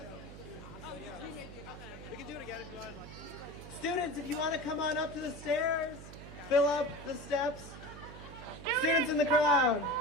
We can do it again if you want. Students, if you want to come on up to the stairs, fill up the steps. Students in the crowd.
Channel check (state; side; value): noise; right; hum, 14 dB below the sound